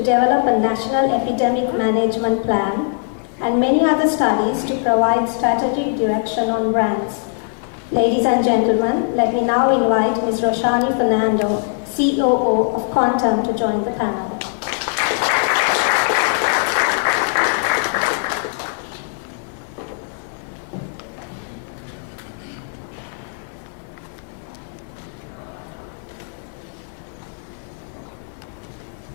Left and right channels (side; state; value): right; silent; 66 dB below the other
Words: a national epidemic management plan, and many other studies to provide strategic direction on brands. Ladies and gentlemen, let me now invite Ms. Roshani Fernando, COO of Quantum, to join the panel.